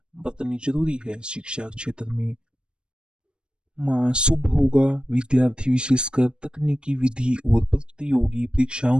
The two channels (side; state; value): left; late; 0.053 ms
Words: बरतनी जरूरी है। शिक्षा क्षेत्र में माह शुभ होगा। विद्यार्थी विशेषकर तकनीकी विधि और प्रतियोगी परीक्षाओं